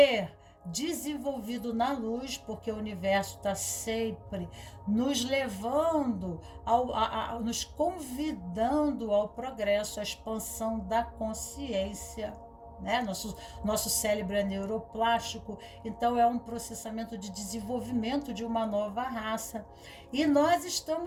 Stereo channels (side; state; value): both; identical; correlation 1.00